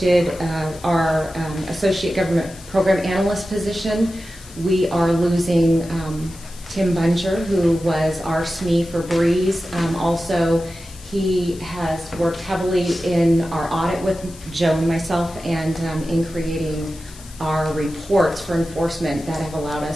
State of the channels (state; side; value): noise; left; hiss, 20 dB below the sound